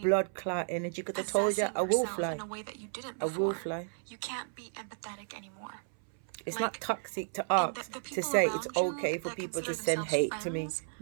blood clot energy. Because I told you, possessing I will yourself fly. in a way that you didn't I before. will fly. You can't be empathetic anymore. It's Like, not toxic to and ask the to people say it's around you okay for that people to consider send themselves hate to me. friends,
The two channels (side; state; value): left; silent; 56 dB below the other